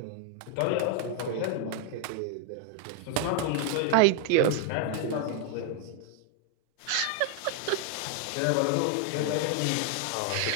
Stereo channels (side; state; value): both; different; correlation 0.00